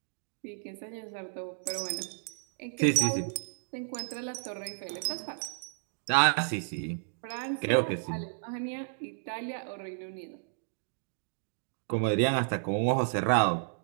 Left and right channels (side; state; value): left; silent; digital silence